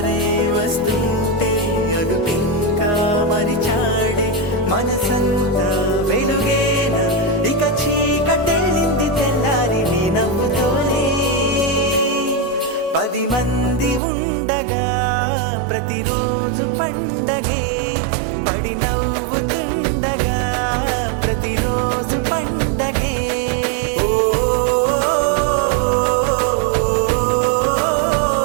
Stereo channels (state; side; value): drops out; left; at 14.0 s